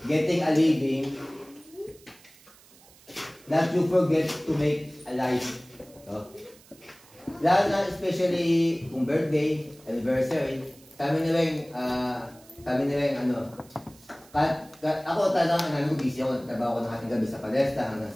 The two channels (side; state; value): right; noise; hiss, 25 dB below the sound